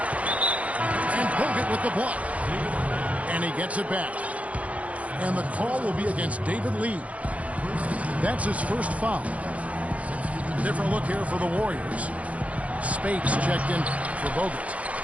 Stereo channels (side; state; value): left; late; 0.066 ms